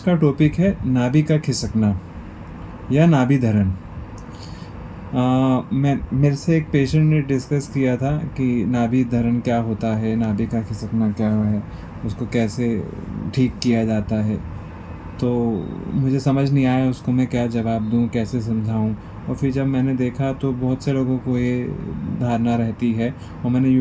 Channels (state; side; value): identical; both; correlation 1.00